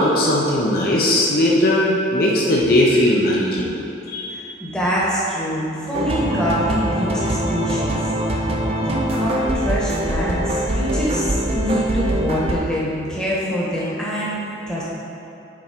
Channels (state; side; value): normal; both; correlation 0.51